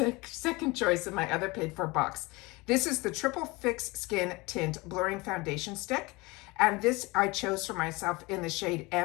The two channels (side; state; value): right; quieter; 23.9 dB